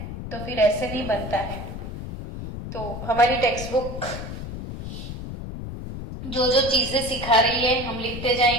तो फिर ऐसे नहीं बनता है। तो हमारी टेक्स्ट बुक जो जो चीजें सिखा रही है हम लिखते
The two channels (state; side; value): noise; left; rumble, 8 dB below the sound